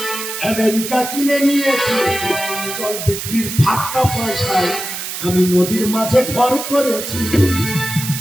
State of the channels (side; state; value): right; noise; hiss, 6 dB below the sound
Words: আমেরিকা কিনে নিয়েছি, জল বিক্রির ফাটকা পয়সায় আমি নদীর মাঝে ঘর করেছি।